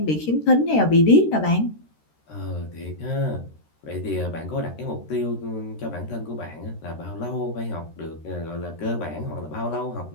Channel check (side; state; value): right; late; 13 ms